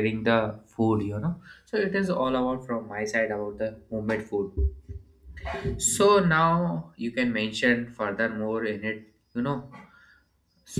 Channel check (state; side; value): identical; both; correlation 1.00